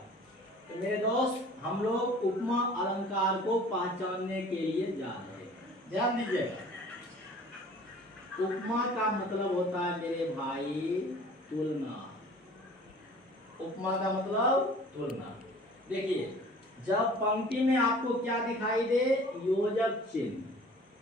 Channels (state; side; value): normal; both; correlation 0.47